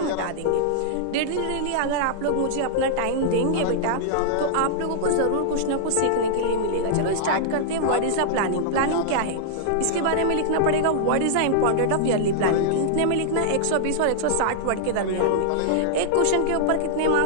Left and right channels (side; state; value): both; different; correlation -0.01